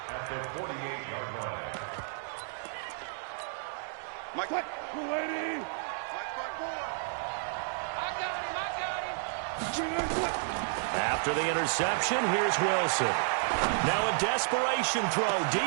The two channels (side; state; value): left; silent; 57 dB below the other